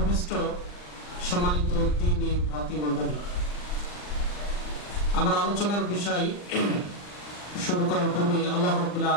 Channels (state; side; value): late; right; 39 ms